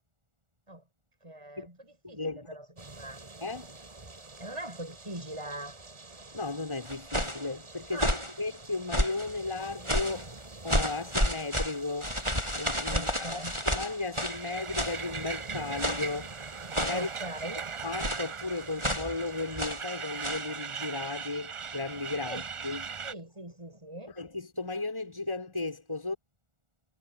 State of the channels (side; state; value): left; late; 1.4 ms